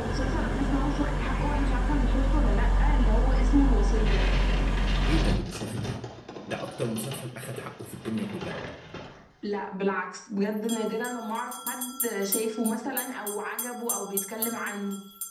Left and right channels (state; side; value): identical; both; correlation 1.00